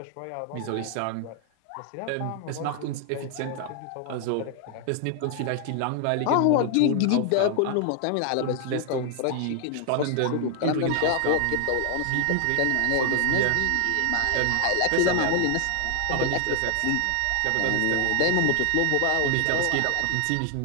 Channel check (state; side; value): different; both; correlation 0.00